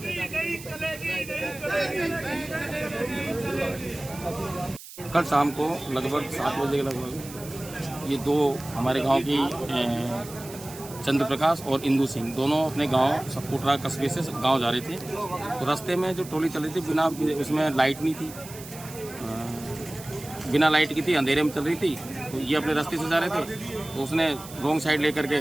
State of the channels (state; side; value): noise; right; hiss, 15 dB below the sound